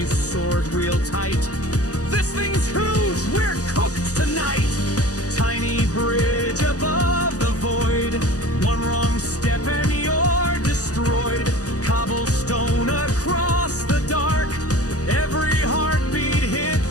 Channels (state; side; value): late; right; 0.67 ms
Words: sword real tight. This thing's huge, we're cooked tonight. Tiny bridge above the void, one wrong step and you're destroyed. Cobblestone across the dark, every heartbeat hit